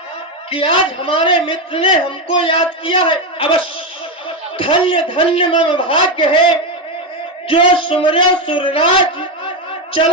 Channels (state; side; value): normal; both; correlation 0.09